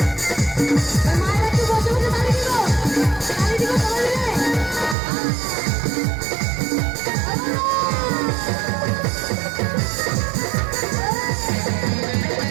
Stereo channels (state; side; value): drops out; left; at 5.0 s